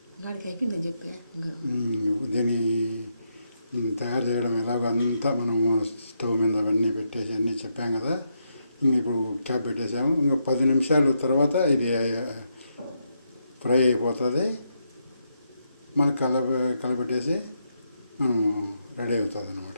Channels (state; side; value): inverted; both; correlation -0.80